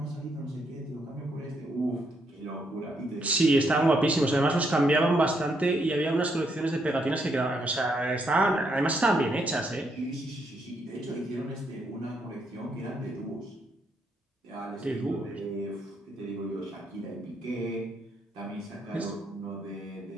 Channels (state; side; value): normal; both; correlation 0.76